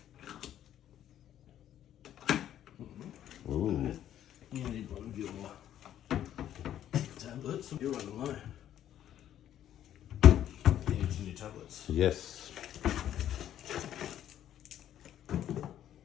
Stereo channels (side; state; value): right; quieter; 11.2 dB